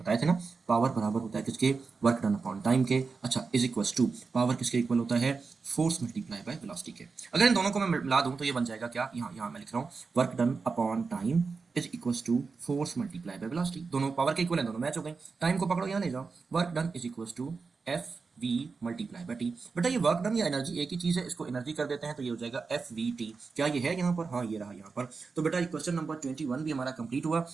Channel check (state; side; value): quieter; left; 4.7 dB